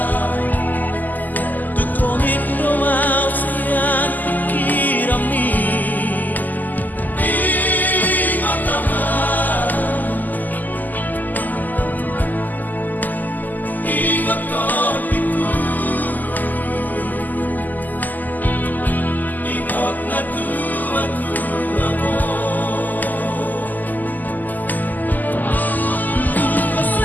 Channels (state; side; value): late; right; 0.084 ms